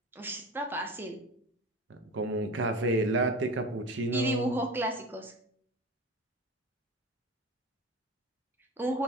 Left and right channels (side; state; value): both; normal; correlation 0.31